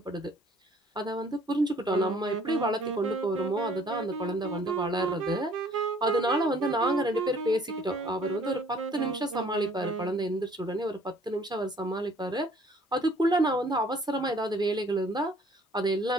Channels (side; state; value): both; normal; correlation 0.57